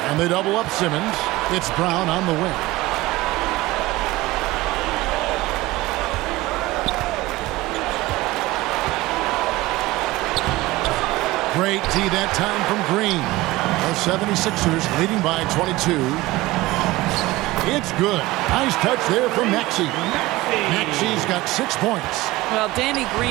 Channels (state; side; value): quieter; left; 18.9 dB